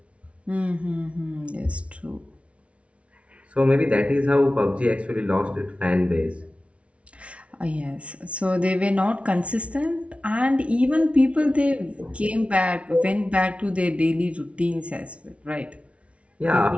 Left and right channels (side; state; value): left; late; 0.062 ms